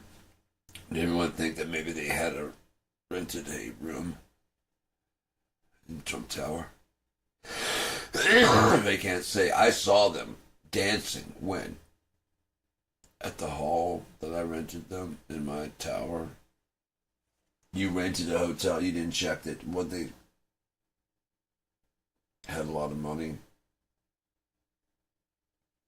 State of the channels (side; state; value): both; identical; correlation 1.00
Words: Did everyone think that maybe they had rented a room in Trump Tower? They can't say, I saw them dancing when? At the hall that I rented them in my tower. You rented a hotel, you didn't check that what they had a lot of money.